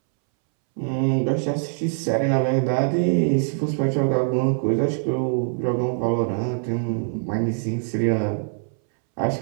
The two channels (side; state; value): left; silent; 63 dB below the other